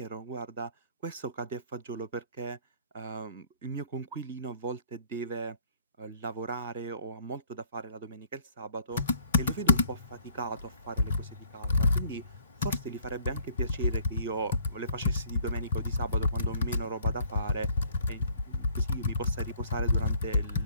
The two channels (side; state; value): both; inverted; correlation -0.59